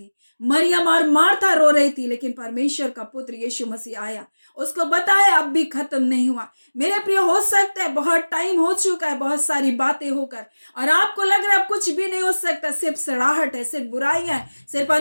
मरियम और मार्था रो रही थी, लेकिन परमेश्वर का पुत्र यीशु मसीह आया, उसको बताया अब भी खत्म नहीं हुआ। मेरे प्रियो, हो सकता है बहुत टाइम हो चुका है, बहुत सारी बातें होकर, और आपको लग रहा है अब कुछ भी नहीं हो सकता, सिर्फ सड़ाहट है, सिर्फ बुराइयां है, सिर्फ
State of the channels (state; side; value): inverted; both; correlation -1.00